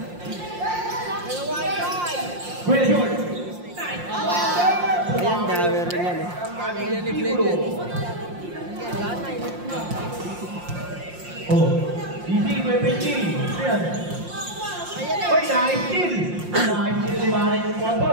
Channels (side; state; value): left; late; 5.7 ms